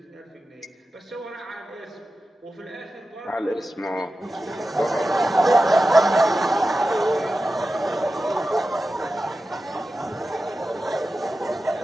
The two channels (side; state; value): both; normal; correlation 0.92